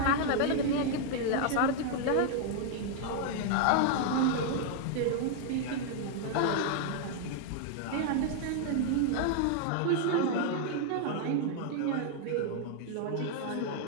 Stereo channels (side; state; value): both; different; correlation 0.00